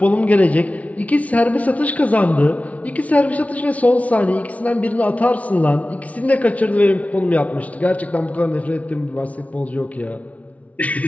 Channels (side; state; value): right; late; 0.068 ms